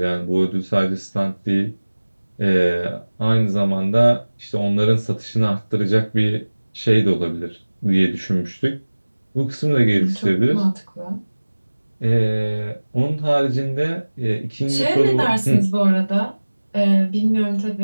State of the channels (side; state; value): both; inverted; correlation -1.00